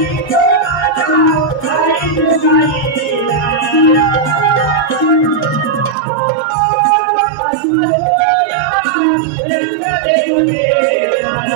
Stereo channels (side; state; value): left; drops out; at 6.0 s